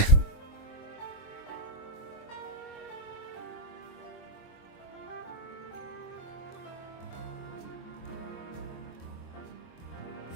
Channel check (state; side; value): late; right; 23 ms